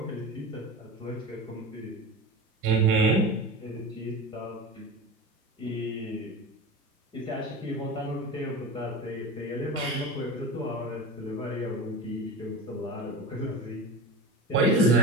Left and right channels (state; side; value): normal; both; correlation 0.28